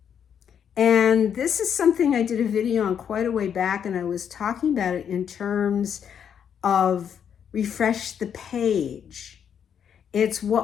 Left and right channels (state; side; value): quieter; right; 8.2 dB